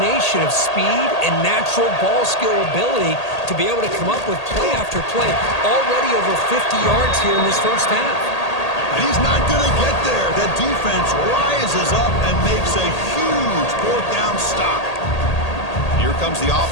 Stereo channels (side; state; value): right; late; 1.8 ms